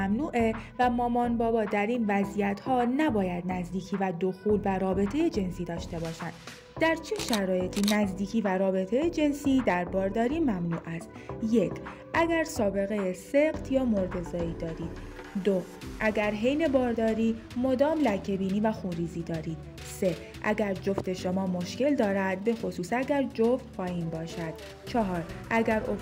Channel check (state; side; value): identical; both; correlation 1.00